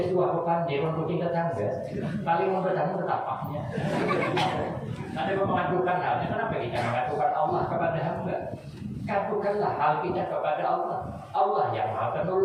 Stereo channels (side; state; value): both; identical; correlation 1.00